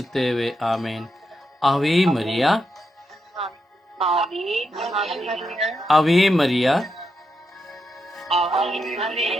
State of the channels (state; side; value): normal; both; correlation 0.84